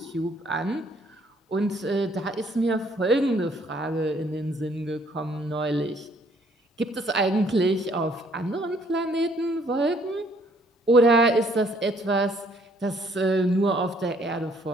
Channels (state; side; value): normal; both; correlation 0.64